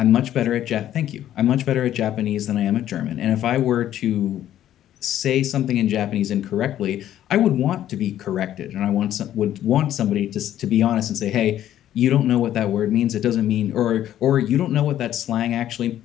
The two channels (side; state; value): right; quieter; 11.9 dB